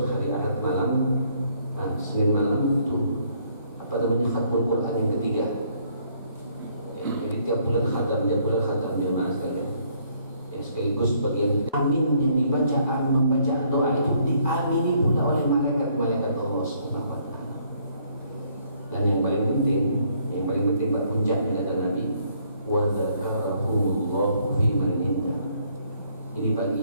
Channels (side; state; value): both; inverted; correlation -0.67